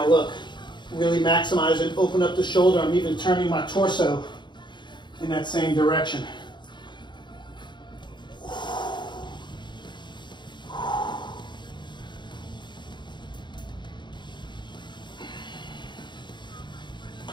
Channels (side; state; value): right; late; 0.22 ms